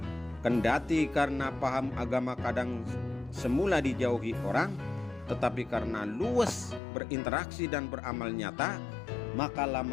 Kendati karena paham agama kadang semula dijauhi orang, tetapi karena luas berinteraksi dan beramal nyata, maka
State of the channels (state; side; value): drops out; right; at 6.8 s